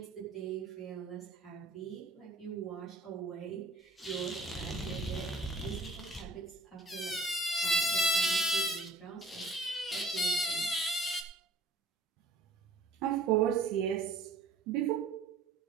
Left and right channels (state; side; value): quieter; left; 3.1 dB